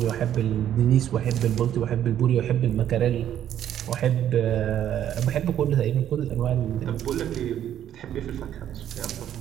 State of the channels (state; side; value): quieter; left; 10.7 dB